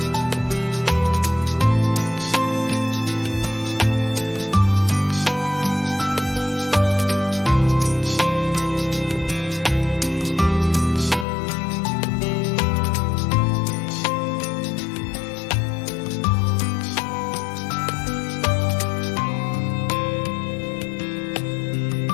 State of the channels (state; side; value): drops out; right; at 11.2 s